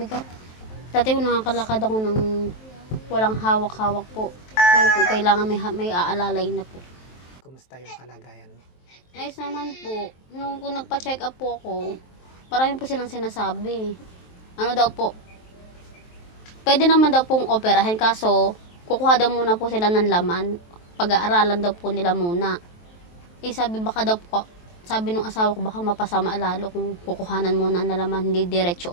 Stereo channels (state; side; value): late; right; 23 ms